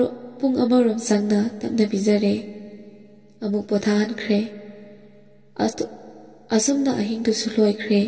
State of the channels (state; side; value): identical; both; correlation 1.00